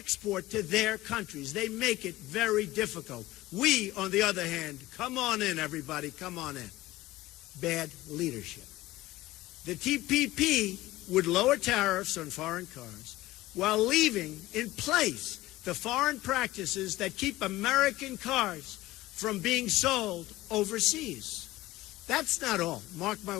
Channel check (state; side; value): quieter; right; 17.6 dB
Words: to their countries. They make it very difficult. We, on the other hand, come on in, everybody, come on in. Bad leadership. The TPP would lower tariffs on foreign cars while leaving in place the foreign practices that keep American cars from being sold overseas. That's not all. Mark my